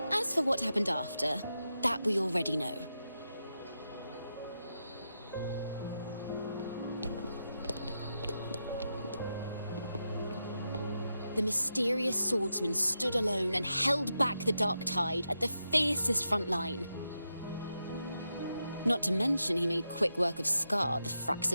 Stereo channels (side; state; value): both; inverted; correlation -0.87